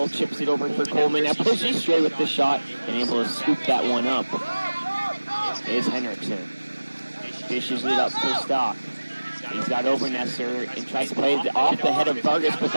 chips it over for Coleman. Now pushes straight with the shot and able to scoop that one up. Is Henriksen. Dishes it up for Stock. He's got Obernesser and tries to play it off the head of Vargas, but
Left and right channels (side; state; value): both; inverted; correlation -1.00